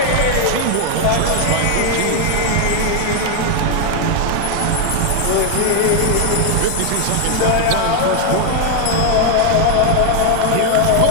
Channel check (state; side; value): different; both; correlation 0.01